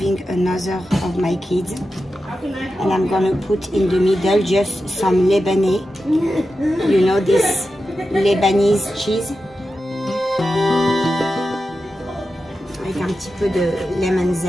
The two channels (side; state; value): both; normal; correlation 0.91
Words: another of my kids and I'm gonna put in the middle just some Lebanese, you know, this Lebanese cheese. Avec un petit peu de lemon